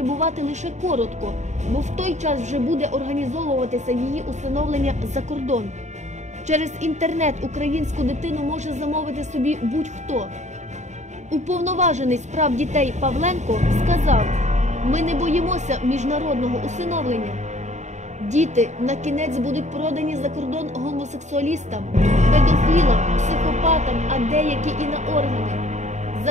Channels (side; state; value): left; late; 0.34 ms